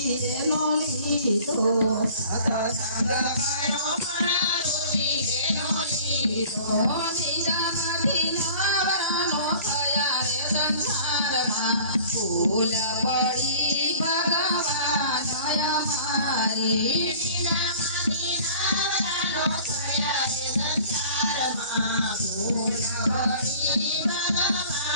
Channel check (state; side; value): inverted; both; correlation -0.47